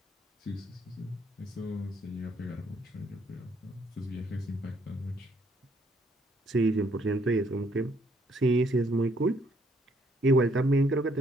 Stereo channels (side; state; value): both; normal; correlation 0.68